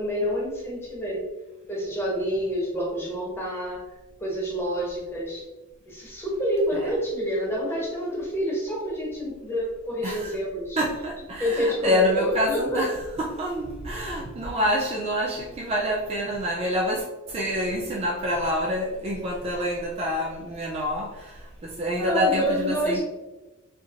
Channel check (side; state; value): both; normal; correlation 0.18